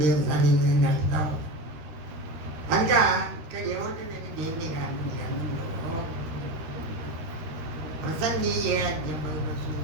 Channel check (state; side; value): late; left; 13 ms